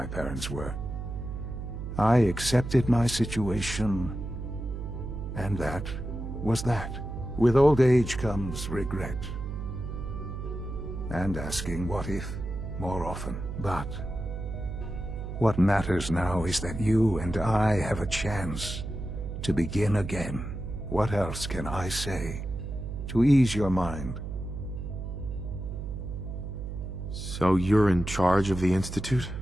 parents were. I accepted my situation, and that was that. With old age comes regret. And asking what if more often. But what matters now is that you and I have a chance to begin again. What else can I say to ease your mind? So you're in charge of the Institute?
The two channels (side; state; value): right; noise; hum, 6 dB below the sound